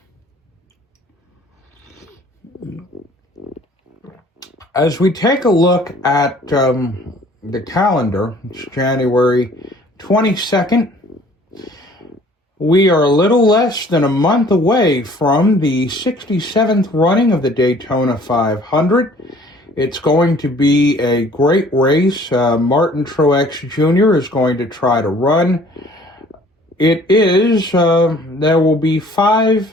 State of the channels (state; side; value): normal; both; correlation 0.54